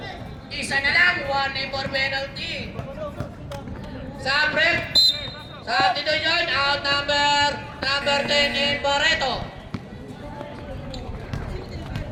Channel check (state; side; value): identical; both; correlation 1.00